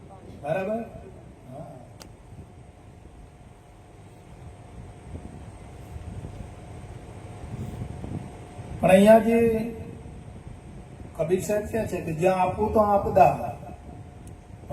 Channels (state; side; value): identical; both; correlation 1.00